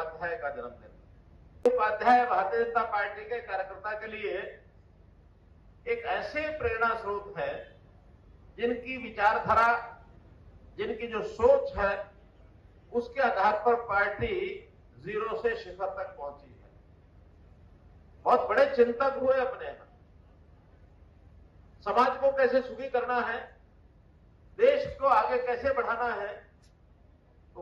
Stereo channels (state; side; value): identical; both; correlation 1.00